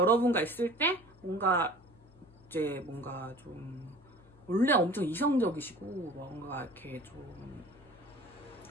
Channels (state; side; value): noise; left; hum, 26 dB below the sound